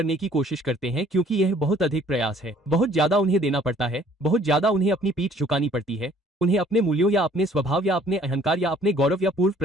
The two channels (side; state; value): both; normal; correlation 0.57